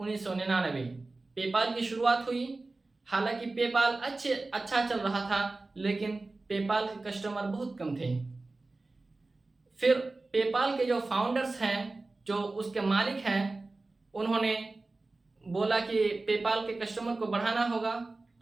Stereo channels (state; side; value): quieter; left; 3.3 dB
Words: पेपाल की शुरुआत हुई। हालांकि पेपाल अच्छा चल रहा था, लेकिन पेपाल के कस्टमर बहुत कम थे। फिर पेपाल के जो फाउंडर्स हैं, जो उसके मालिक हैं, उन्होंने बोला कि पेपाल के कस्टमर को बढ़ाना होगा,